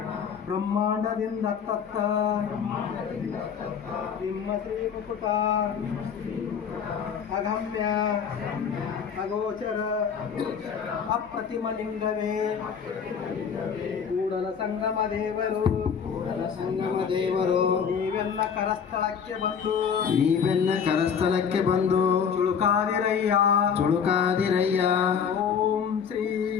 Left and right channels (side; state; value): right; quieter; 7.0 dB